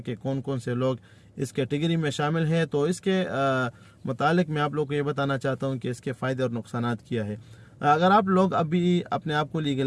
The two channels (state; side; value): identical; both; correlation 1.00